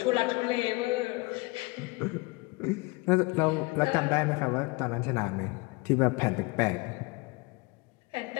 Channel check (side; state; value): right; quieter; 25.3 dB